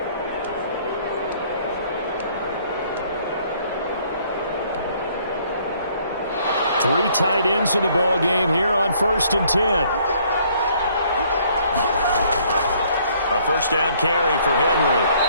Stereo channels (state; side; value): inverted; both; correlation -0.63